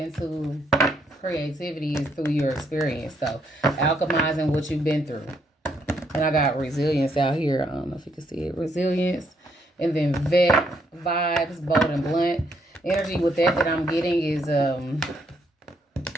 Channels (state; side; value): normal; both; correlation 0.73